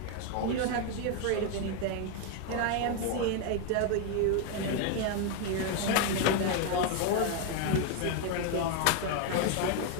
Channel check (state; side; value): different; both; correlation 0.01